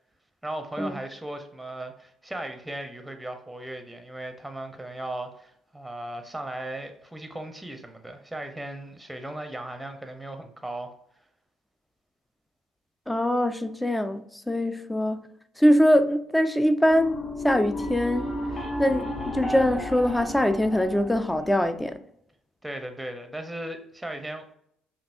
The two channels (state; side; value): normal; both; correlation 0.94